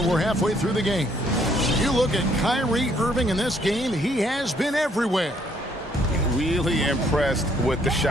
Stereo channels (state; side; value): normal; both; correlation 0.67